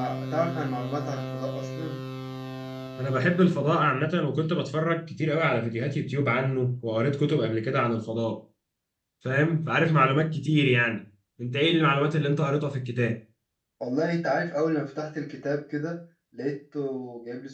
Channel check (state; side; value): identical; both; correlation 1.00